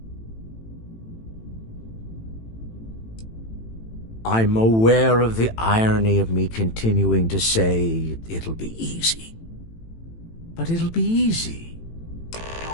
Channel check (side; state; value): right; late; 18 ms